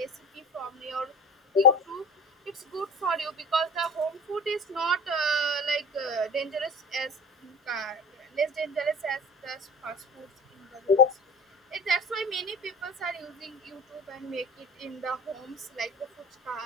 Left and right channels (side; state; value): both; normal; correlation 0.36